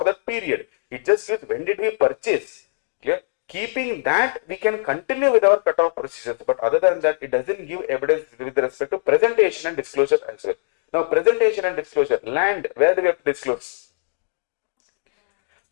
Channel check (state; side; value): silent; right; digital silence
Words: that period. It just gives when did we purchase, clear. Keeping that, we can continue with our cutoff procedures, but other than that, it doesn't give evidence with respect to presentation and disclosure as well. Now, presentation and disclosure, land, where do we have to disclose?